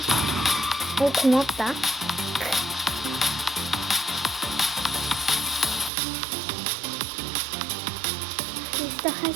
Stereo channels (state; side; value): drops out; left; at 5.9 s